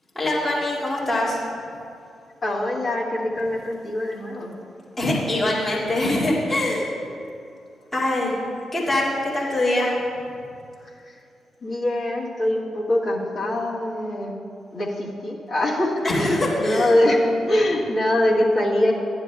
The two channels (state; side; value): normal; both; correlation 0.90